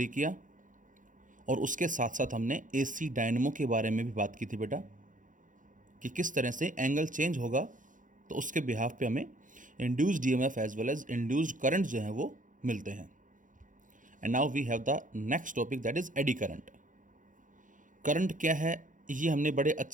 किया और उसके साथ साथ हमने एसी डायनेमो के बारे में भी बात की थी बेटा, कि किस तरह से एंगल चेंज होगा तो उसके बिहाफ पे हमें induced EMF as well as induced current जो है वो मिलते हैं। And now we have the next topic, that is eddy current. Current क्या है ये हमने बड़े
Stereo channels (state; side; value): late; left; 0.38 ms